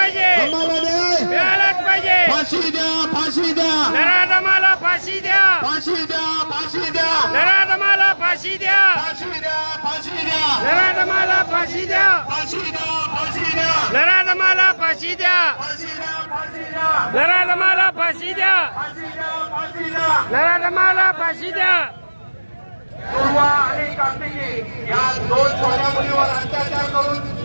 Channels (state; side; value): inverted; both; correlation -1.00